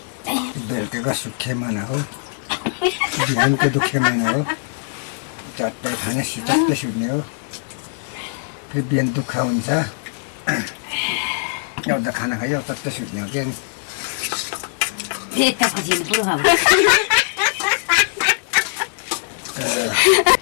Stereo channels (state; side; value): silent; right; digital silence